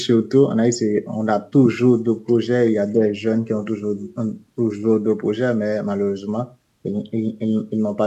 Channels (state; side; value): identical; both; correlation 1.00